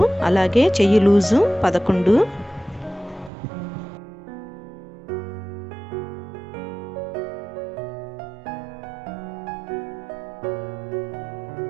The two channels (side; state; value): left; drops out; at 3.3 s